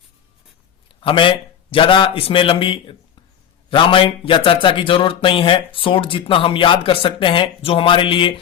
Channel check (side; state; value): right; quieter; 9.0 dB